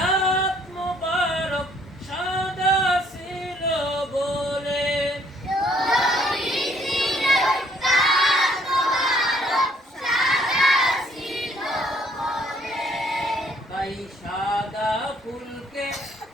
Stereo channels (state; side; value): normal; both; correlation 0.63